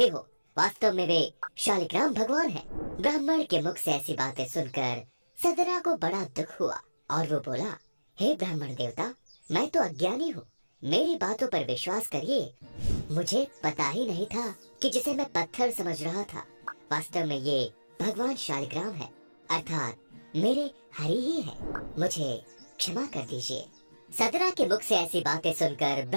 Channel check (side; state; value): both; inverted; correlation -1.00